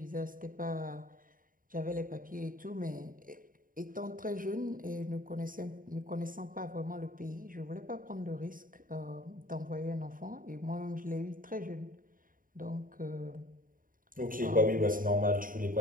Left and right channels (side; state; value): left; late; 0.40 ms